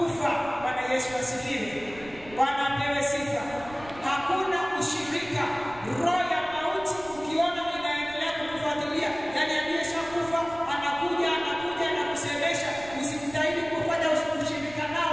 Bwana Yesu asifiwe. Bwana apewe sifa. Hakuna ushirika. Roho ya mauti ukiona inaendelea kukufuatilia, yani aliyeshakufa anakuja na kusemesha, usimtahidi kufanya ushirika nao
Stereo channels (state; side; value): noise; right; rumble, 19 dB below the sound